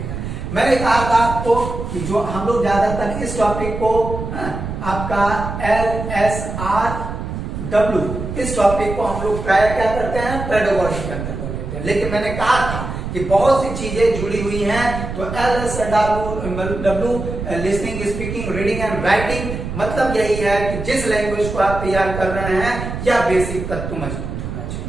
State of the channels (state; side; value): noise; right; rumble, 6 dB below the sound